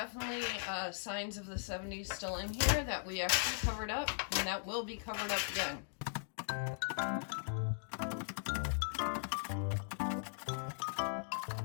signs of the 70s still in here that we actually covered up, and that will be covered up again.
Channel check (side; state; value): right; silent; digital silence